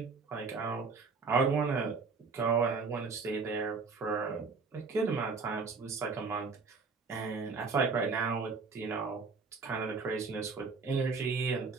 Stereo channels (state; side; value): quieter; left; 4.6 dB